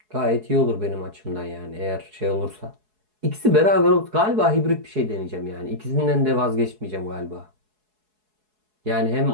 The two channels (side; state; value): left; late; 4.7 ms